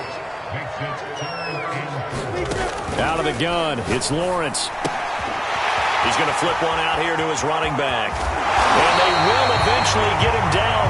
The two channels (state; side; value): identical; both; correlation 1.00